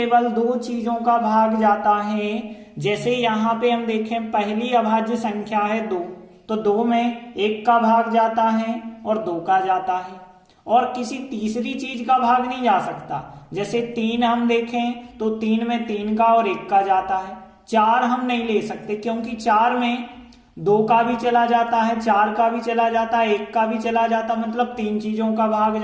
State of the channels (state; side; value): identical; both; correlation 1.00